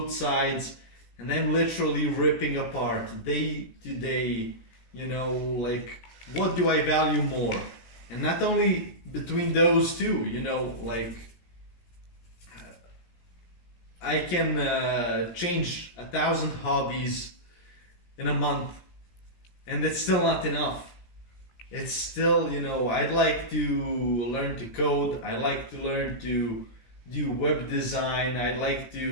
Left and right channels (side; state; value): right; late; 17 ms